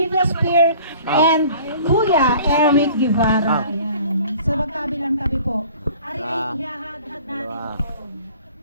and Kuya Eric Guevara. Ayan. Sa magkabilang tabi po. Ari ay ihahad-had natin ito.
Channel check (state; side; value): inverted; both; correlation -0.48